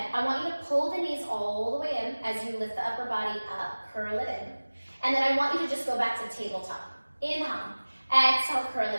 I want you to pull the knees all the way in as you lift the upper body up, curl it in. And then I want you to just go back to tabletop. Inhale, exhale, curl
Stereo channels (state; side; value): inverted; both; correlation -1.00